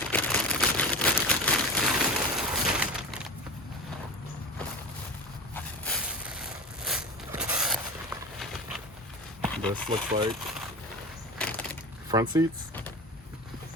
This looks like front seats.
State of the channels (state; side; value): normal; both; correlation 0.28